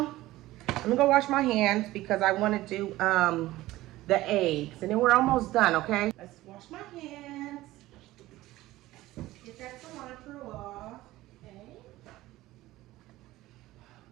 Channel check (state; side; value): quieter; left; 17.0 dB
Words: I'm gonna go wash my hands because I want to do the eggs, and then we're almost done. Okay, let's wash my hands. Get that cilantro off. Okay.